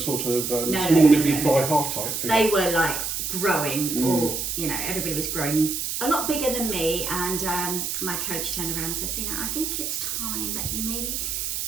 of small no, nippy no. fly half type figure. They were like growing, or everybody was growing a lot bigger than me. And my coach turned around and said, "Zeenat, I think it's time that you maybe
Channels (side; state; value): right; noise; hiss, 2 dB below the sound